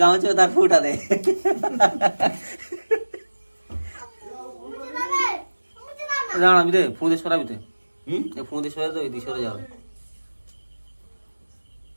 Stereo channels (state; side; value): inverted; both; correlation -1.00